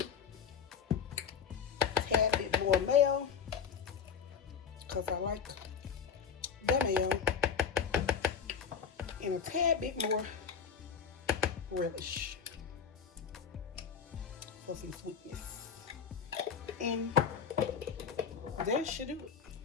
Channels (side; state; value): right; quieter; 6.7 dB